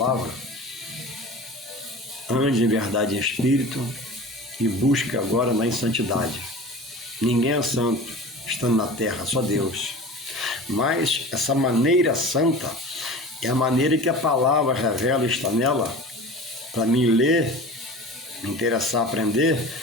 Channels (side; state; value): both; normal; correlation 0.36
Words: ande em verdade e em espírito e busque agora na santidade. Ninguém é santo estando na terra, só Deus. Mas essa maneira santa é a maneira que a palavra revela, está nela, para mim ler, me interessar, aprender